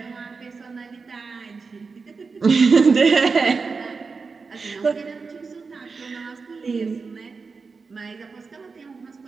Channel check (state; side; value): quieter; left; 4.7 dB